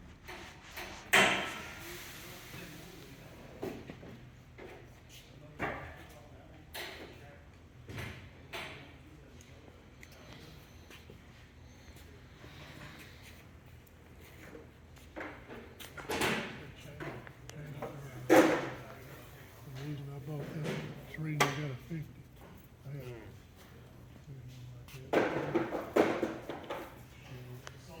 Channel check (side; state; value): both; identical; correlation 1.00